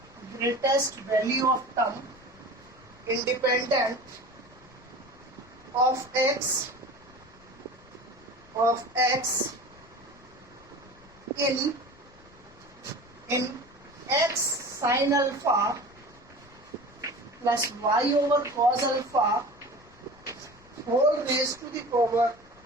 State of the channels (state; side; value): noise; left; rumble, 25 dB below the sound